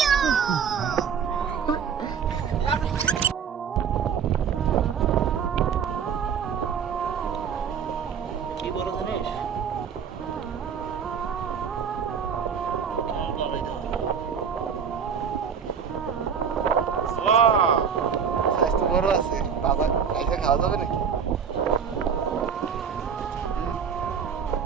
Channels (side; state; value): left; quieter; 7.1 dB